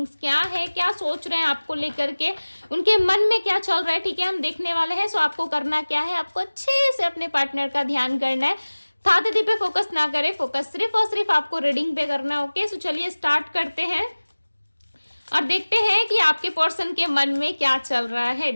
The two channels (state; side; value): inverted; both; correlation -1.00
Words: क्या है, क्या सोच रहे हैं आपको लेकर के, उनके मन में क्या चल रहा है। ठीक है, हम देखने वाले हैं। सो आपको करना क्या है, आपको अच्छे से अपने पार्टनर का ध्यान करना है। था दीदी पे फोकस ना करें, फोकस सिर्फ और सिर्फ आपको रीडिंग पे करना है। ओके, सो चलिए स्टार्ट करते हैं और देखते हैं कि आपके पर्सन के मन में क्या चल रहा है।